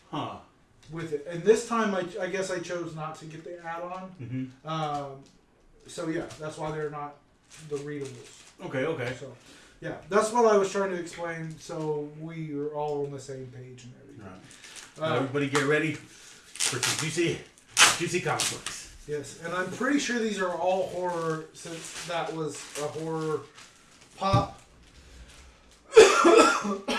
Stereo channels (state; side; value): identical; both; correlation 1.00